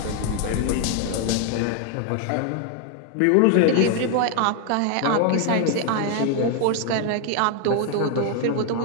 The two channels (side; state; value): both; different; correlation 0.00